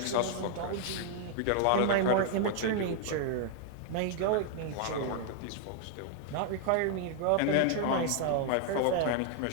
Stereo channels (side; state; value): both; different; correlation 0.00